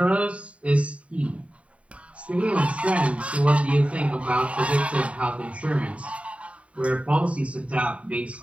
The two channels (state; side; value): late; left; 0.064 ms